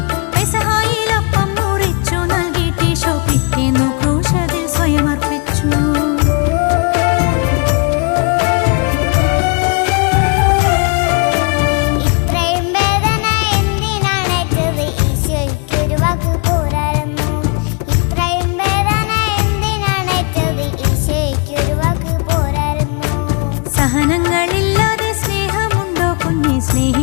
നിങ്ങളില്ലാതെ സ്നേഹമുണ്ടോ കുഞ്ഞെ?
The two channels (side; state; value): right; quieter; 34.5 dB